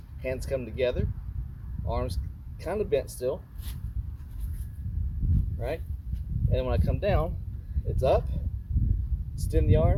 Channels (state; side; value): identical; both; correlation 1.00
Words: Hands come together. Arms kind of bent still, right? And when I come down, it's up, extend the